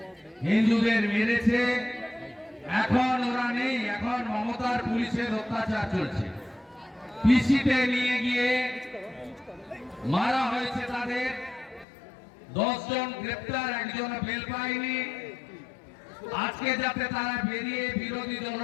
হিন্দুদের মেরেছে। এখন ওরা নেই, এখন মমতার পুলিশের অত্যাচার চলছে। পিসিতে নিয়ে গিয়ে মারা হয়েছে তাদের, 10 জন গ্রেপ্তার, একজন বেল পায়নি। আজকে যাতে তারা বেরিয়ে বিরোধী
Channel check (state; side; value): drops out; right; at 11.9 s